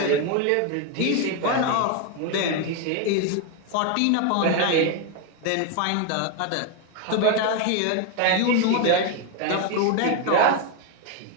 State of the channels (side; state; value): both; different; correlation 0.01